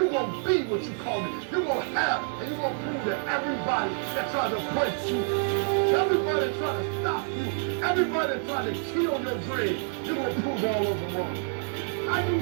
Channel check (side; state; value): left; silent; 60 dB below the other